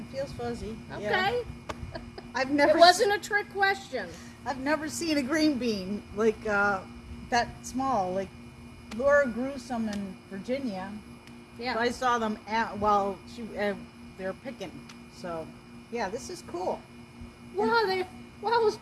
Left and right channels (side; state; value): both; identical; correlation 1.00